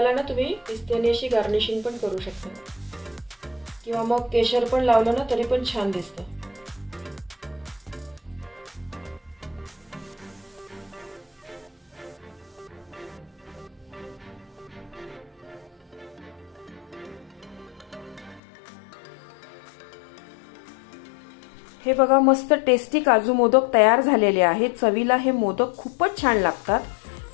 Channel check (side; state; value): right; drops out; at 18.4 s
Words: ना तुम्ही पिस्त्याने अशी गार्निशिंग पण करू शकता किंवा मग केशर पण लावलं ना तरी पण छान दिसतं। हे बघा मस्त टेस्टी काजू मोदक तयार झालेले आहेत। चवीला हे मोदक खूपच छान लागतात।